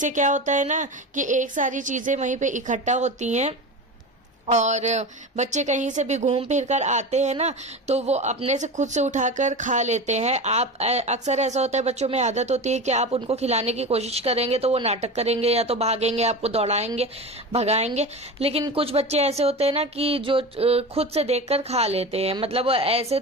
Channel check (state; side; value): normal; both; correlation 0.27